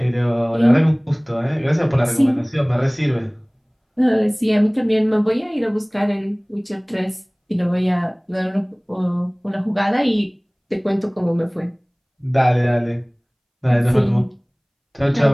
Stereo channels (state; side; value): identical; both; correlation 1.00